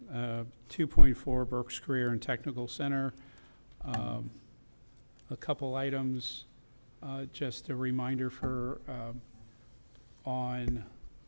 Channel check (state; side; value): inverted; both; correlation -1.00